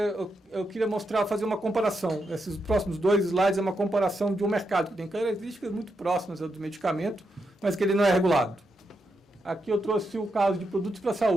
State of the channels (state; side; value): normal; both; correlation 0.84